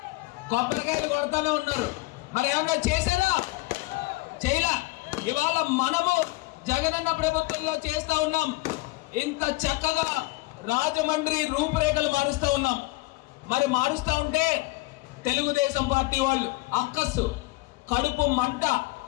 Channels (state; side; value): quieter; right; 21.9 dB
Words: కొబ్బరికాయలు కొడతానే ఉన్నారు. మరి ఏమన్నా చేశారా? చేయలా. ఇవాళ మనము జగనన్న ప్రభుత్వంలో చేస్తా ఉన్నాం. ఇంత చక్కగా రాజమండ్రి రూపురేఖలు మారుస్తా ఉన్నాం. మరి మారుస్తా ఉంటే తెలుగుదేశం పార్టీ వాళ్ళు అక్కస్సు కడుపు మంట